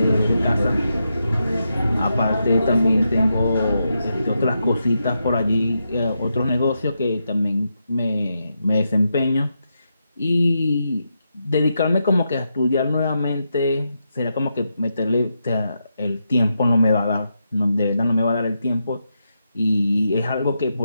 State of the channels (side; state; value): both; inverted; correlation -0.84